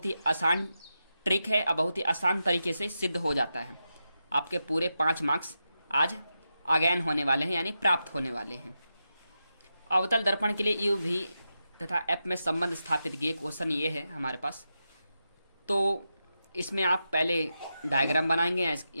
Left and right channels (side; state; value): both; inverted; correlation -0.88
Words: ही आसान ट्रिक है और बहुत ही आसान तरीके से सिद्ध हो जाता है। आपके पूरे 5 मार्क्स आज अगेन होने वाले हैं, यानी प्राप्त होने वाले हैं। अवतल दर्पण के लिए यू भी तथा एफ में संबंध स्थापित किए, क्वेश्चन ये है हमारे पास। तो इसमें आप पहले डायग्राम बनाएंगे,